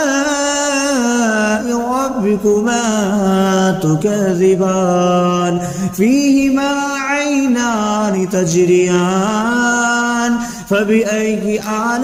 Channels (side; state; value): both; identical; correlation 1.00